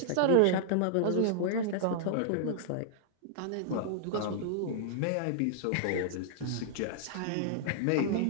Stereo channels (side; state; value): both; different; correlation -0.01